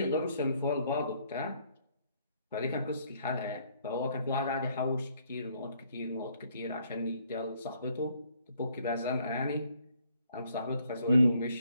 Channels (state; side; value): inverted; both; correlation -0.67